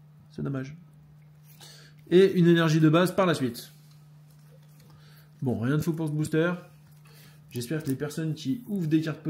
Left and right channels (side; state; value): both; identical; correlation 1.00